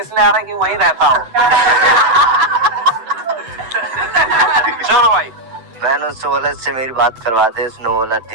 आ रहा है कि वहीं रहता हो। चलो भाई, मैंने उससे बोला इससे मेरी बात करवा दे। उसने बोला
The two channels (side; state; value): left; late; 8.0 ms